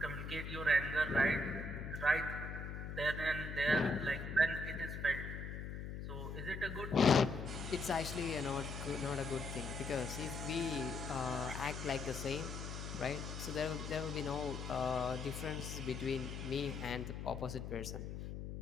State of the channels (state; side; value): noise; left; hum, 6 dB below the sound